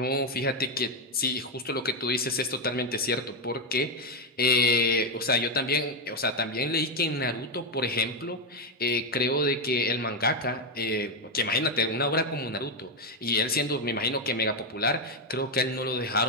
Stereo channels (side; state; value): both; normal; correlation 0.05